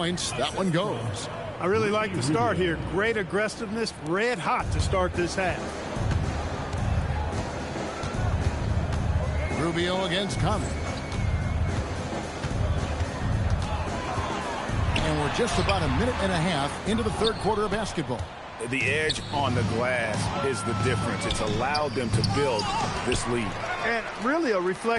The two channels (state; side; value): identical; both; correlation 1.00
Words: That one goes. I really like the start here. Great aggressiveness, red hot to start this half. Rubio against Conley. And we're just about a minute and a half into the third quarter of basketball. The edge on the glass is the difference. It's allowed them to build this lead. And really a